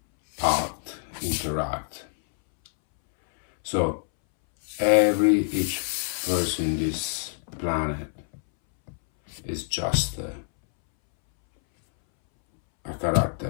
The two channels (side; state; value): right; silent; 61 dB below the other